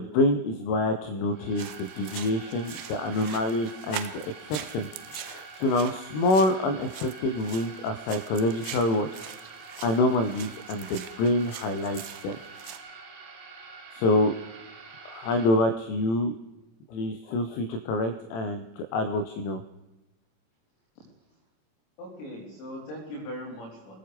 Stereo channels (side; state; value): right; late; 26 ms